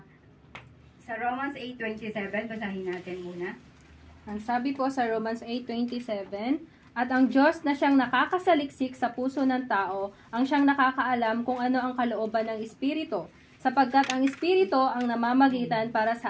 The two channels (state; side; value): identical; both; correlation 1.00